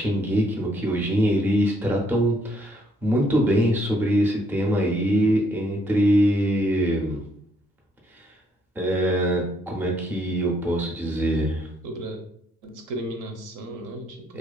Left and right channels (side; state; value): both; normal; correlation 0.70